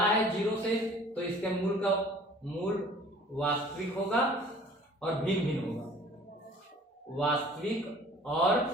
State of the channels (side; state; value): both; normal; correlation 0.50